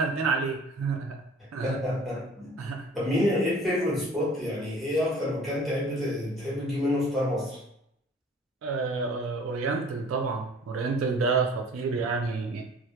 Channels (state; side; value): normal; both; correlation 0.49